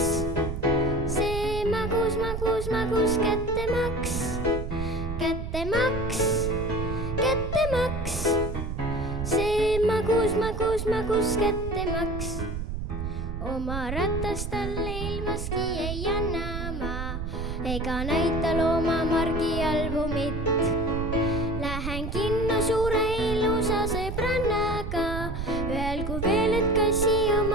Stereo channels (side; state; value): right; noise; rumble, 4 dB below the sound